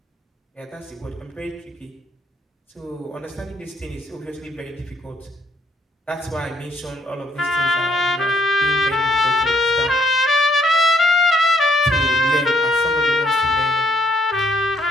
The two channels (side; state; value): both; normal; correlation 0.69